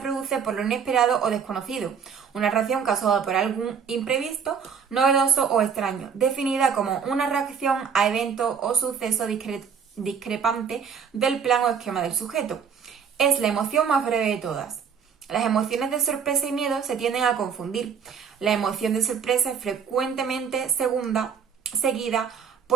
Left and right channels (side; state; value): left; quieter; 6.9 dB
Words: por lo inesperado o desconocido, una reacción causada por algún imprevisto, novedoso o extraño, definida como una reacción a evento o suceso discrepante del plan o esquema del sujeto. Es la emoción más breve de todas. Las emociones de sorpresa y miedo se tienden a confundir. La emoción de sorpresa es frecuentemente seguida